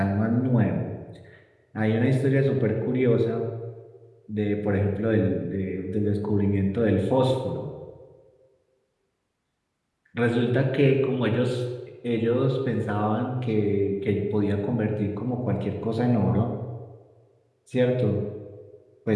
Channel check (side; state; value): both; identical; correlation 1.00